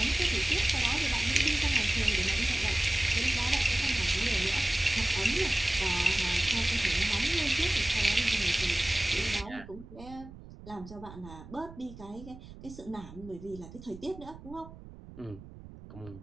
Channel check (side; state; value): right; noise; rumble, 17 dB below the sound